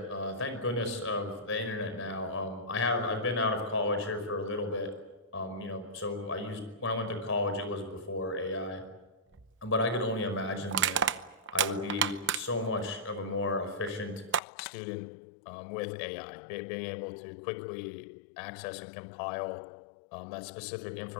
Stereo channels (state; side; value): drops out; right; at 14.4 s